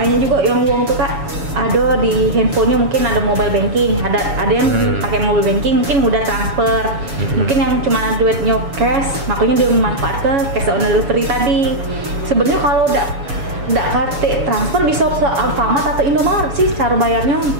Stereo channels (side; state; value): left; late; 7.0 ms